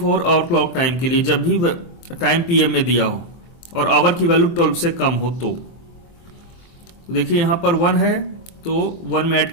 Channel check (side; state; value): right; late; 23 ms